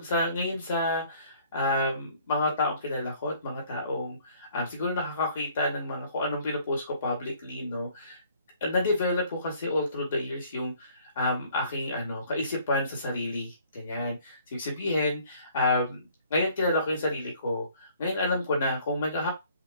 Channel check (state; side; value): inverted; both; correlation -0.58